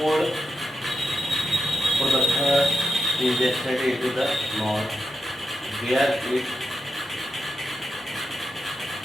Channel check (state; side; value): normal; both; correlation 0.87